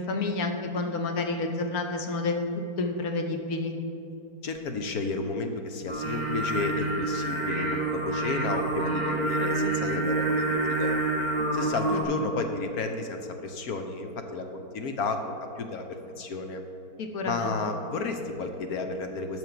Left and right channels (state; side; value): late; right; 4.4 ms